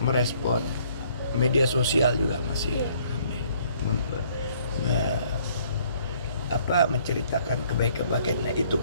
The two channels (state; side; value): inverted; both; correlation -0.62